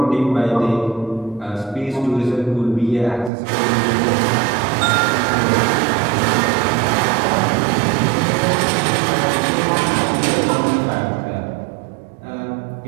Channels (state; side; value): drops out; left; at 3.3 s